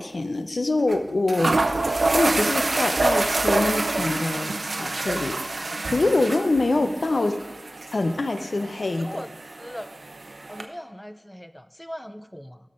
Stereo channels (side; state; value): both; normal; correlation 0.95